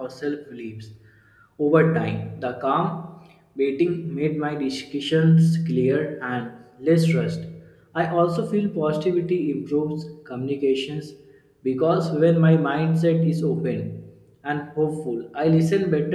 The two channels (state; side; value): identical; both; correlation 1.00